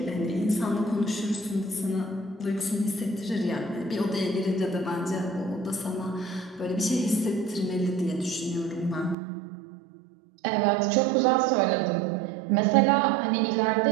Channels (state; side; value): drops out; left; at 9.2 s